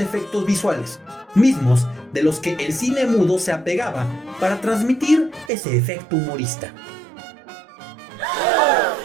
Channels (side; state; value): left; drops out; at 5.5 s